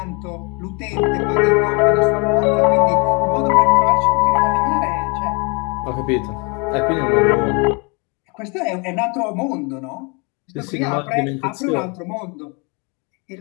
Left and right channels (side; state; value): right; quieter; 31.9 dB